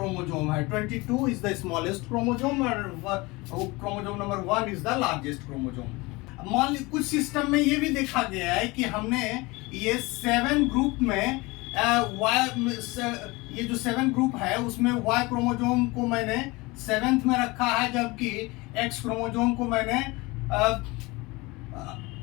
है। 22 इज द स्मॉलेस्ट क्रोमोजोम और chromosome number 1 is the largest chromosome. मान ली कुछ सिस्टम में ये भी देखा गया है कि हमने ये 7 ग्रुप में ये जो 7 ग्रुप है उसमें Y क्रोमोजोम को मैंने 7th में रखा है, जबकि X क्रोमोजोम को मैंने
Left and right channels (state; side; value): quieter; right; 23.6 dB